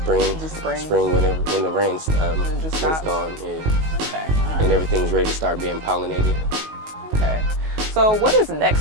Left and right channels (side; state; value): left; late; 19 ms